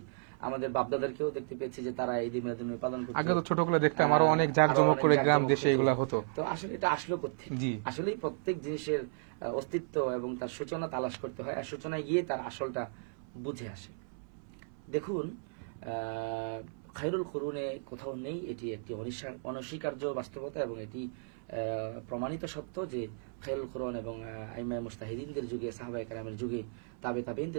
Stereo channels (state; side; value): silent; left; 55 dB below the other